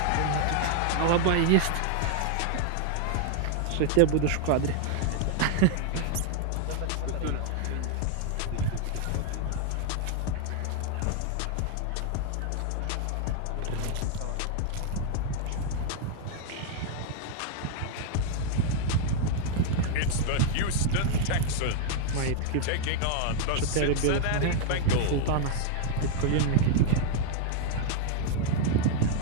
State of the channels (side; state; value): both; different; correlation 0.00